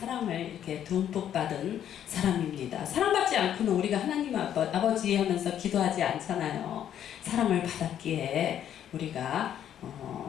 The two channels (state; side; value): quieter; right; 10.2 dB